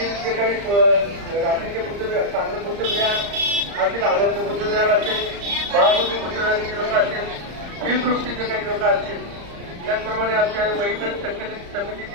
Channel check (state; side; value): late; left; 35 ms